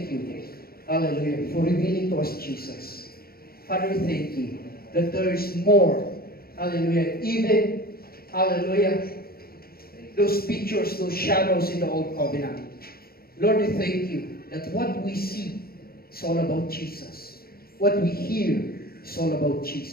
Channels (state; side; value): late; right; 0.44 ms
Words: you. Hallelujah. For revealing to us Jesus. Father, we thank you that there is more. Hallelujah. Even, hallelujah, those pictures, those shadows in the Old Covenant. Lord, we thank you that what we see is all about Jesus. What we hear is all about